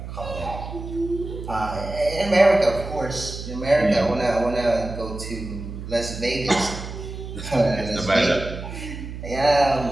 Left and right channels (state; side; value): noise; right; hum, 9 dB below the sound